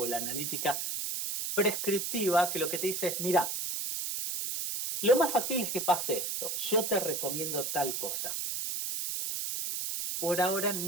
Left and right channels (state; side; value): noise; right; hiss, 2 dB below the sound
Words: la analítica prescriptiva, que lo que te dice es, mira, lo más factible es que pase esto, yo te recomiendo tal cosa. Por ahora